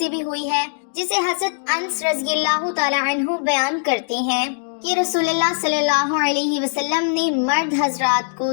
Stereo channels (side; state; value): right; silent; digital silence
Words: بھی ہوئی ہے جسے حضرت انس رضی اللہ تعالی عنہ بیان کرتے ہیں کہ رسول اللہ صلی اللہ علیہ وسلم نے مرد حضرات کو